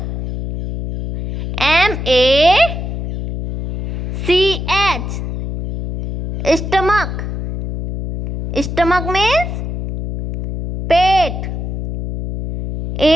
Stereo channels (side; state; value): left; noise; hum, 5 dB below the sound